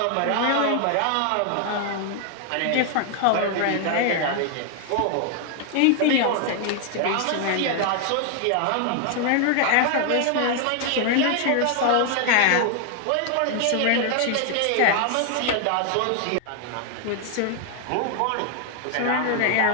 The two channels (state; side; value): different; both; correlation 0.00